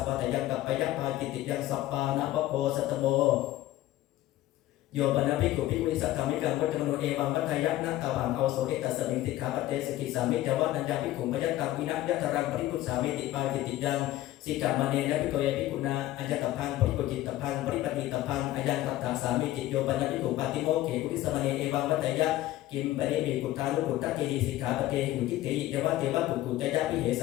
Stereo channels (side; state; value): right; quieter; 15.1 dB